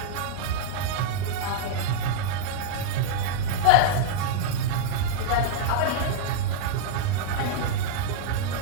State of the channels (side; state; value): both; different; correlation -0.01